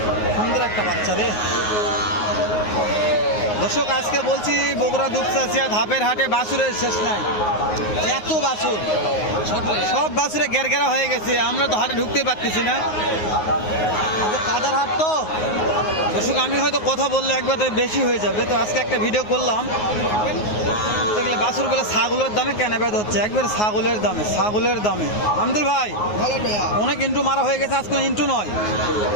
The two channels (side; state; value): right; late; 9.5 ms